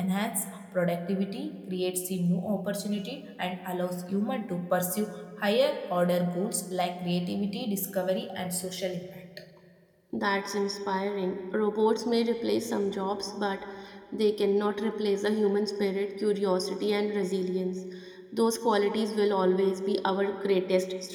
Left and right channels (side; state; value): both; identical; correlation 1.00